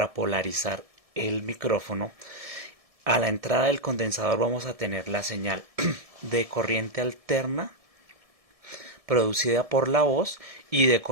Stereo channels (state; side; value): late; left; 1.7 ms